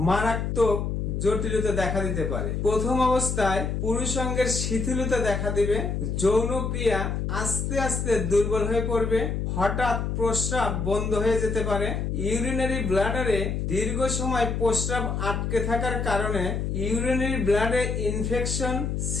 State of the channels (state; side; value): noise; left; hum, 1 dB below the sound